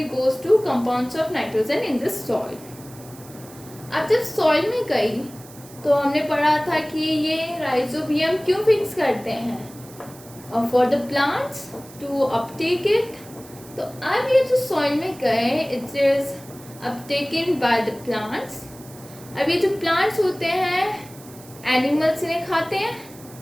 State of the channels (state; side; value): noise; right; hiss, 20 dB below the sound